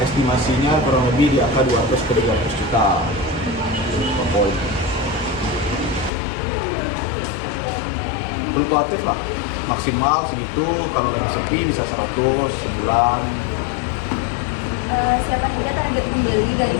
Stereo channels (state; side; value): drops out; right; at 6.1 s